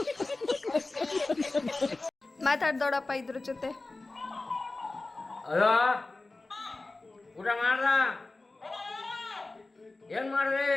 ಮಾತಾಡ್ದೋಡಪ್ಪ ಇದ್ರ ಜೊತೆ. ಹಲೋ, ಊಟ ಮಾಡ್ದ? ಏನ್ ಮಾಡ್ರಿ?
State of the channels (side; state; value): right; quieter; 3.2 dB